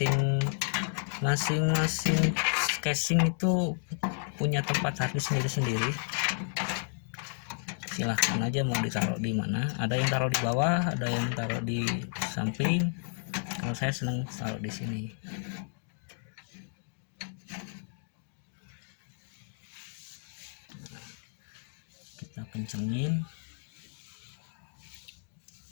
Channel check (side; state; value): right; silent; digital silence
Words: casing itu punya tempat harddisk sendiri-sendiri. Silahkan aja mau ditaruh di mana. Ada yang taruh di bawah, ada yang taruh di samping. Kalau saya senang taruh di sini. Kita kencengin.